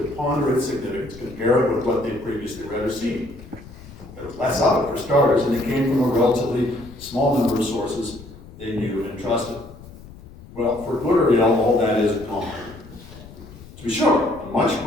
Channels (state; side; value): noise; left; rumble, 18 dB below the sound